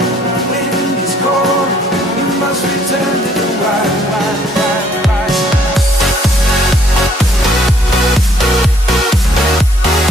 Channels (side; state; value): both; normal; correlation 0.64